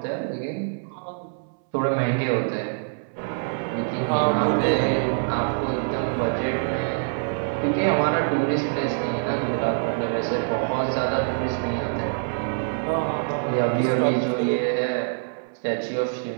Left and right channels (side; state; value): left; silent; 62 dB below the other